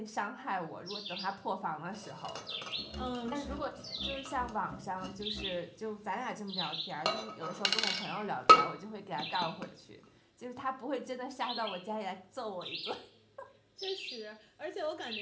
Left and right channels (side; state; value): both; identical; correlation 1.00